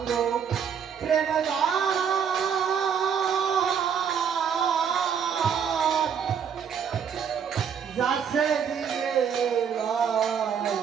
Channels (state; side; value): quieter; left; 7.5 dB